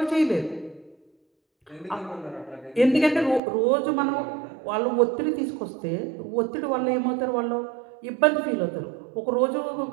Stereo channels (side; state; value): left; drops out; at 3.4 s